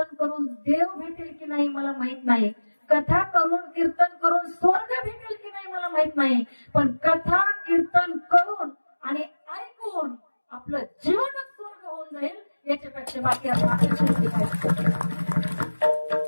करून देव भेटेल की नाही मला माहित नाही, कथा करून कीर्तन करून स्वर्ग भेटेल की नाही मला माहित नाही, पण कथा कीर्तन करून आणि ऐकून आपलं जीवन करायचे बाकी आपण अपेक्षा केली पाहिजे.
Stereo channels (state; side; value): inverted; both; correlation -1.00